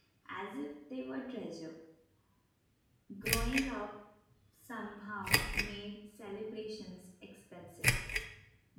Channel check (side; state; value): both; identical; correlation 1.00